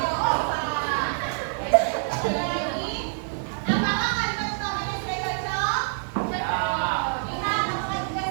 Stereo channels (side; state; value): left; silent; digital silence